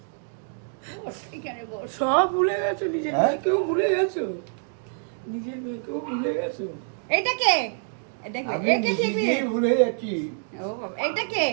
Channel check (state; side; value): silent; left; 60 dB below the other